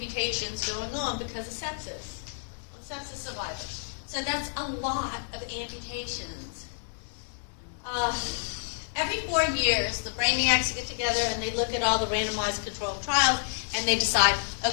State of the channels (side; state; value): right; silent; digital silence